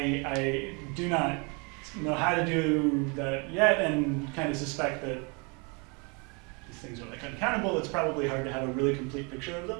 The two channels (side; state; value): left; quieter; 32.1 dB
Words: do not know how to do that yet, and kind of suspect that these things are like uncountable. It's probably hard to have a really complete picture of